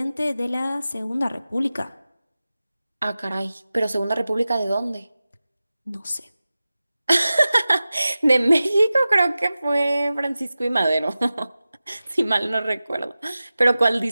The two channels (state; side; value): inverted; both; correlation -0.95